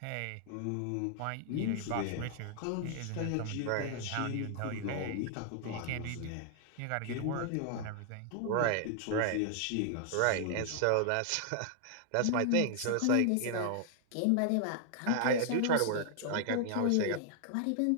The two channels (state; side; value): different; both; correlation -0.01